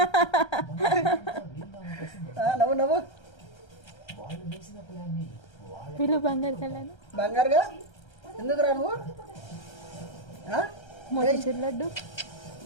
నవ్వు వీళ్ళు బంగారు కళ్యాణ్ బంగారుగా ఎందుకు రా నువ్వు మోతీచూర్ లడ్డు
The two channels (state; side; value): late; right; 1.3 ms